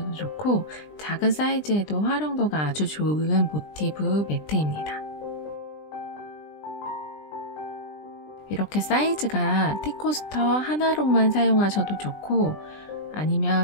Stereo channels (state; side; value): late; right; 20 ms